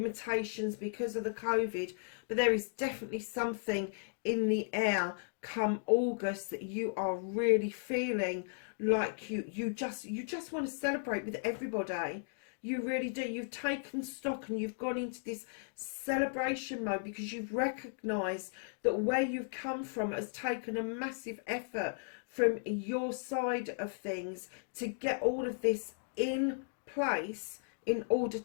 because of the COVID, but there is definitely something in the air come August that you are really feeling like you just want to celebrate with everybody. You really do. You've taken stock and you've gone into this celebration mode because you've recognised that where you've come from has taken a massive effort from your side of things to get all of this in place in order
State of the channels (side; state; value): right; silent; digital silence